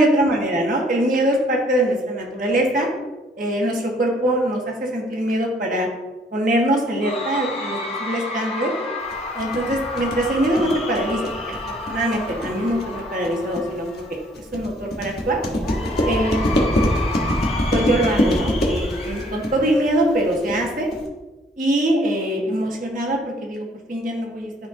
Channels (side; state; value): both; normal; correlation 0.61